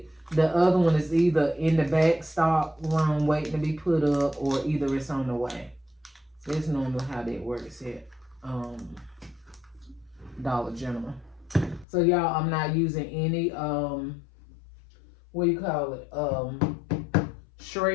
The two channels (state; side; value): drops out; right; at 11.9 s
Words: the other one is either in the back stock room waiting to be put up. Or either it's on the way. That's normally how that works at Dollar General. So y'all, I'm not using any